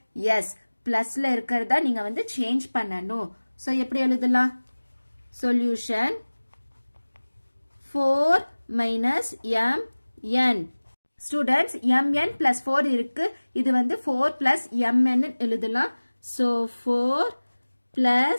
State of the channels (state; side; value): inverted; both; correlation -1.00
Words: எஸ், பிளஸ்ல இருக்கிறதா நீங்க வந்து சேஞ்ச் பண்ணணும். so எப்படி எழுதலாம்? Solution 4 minus mn. students, mn plus 4 இருக்கு. இது வந்து 4 plus mn எழுதலாம். so 4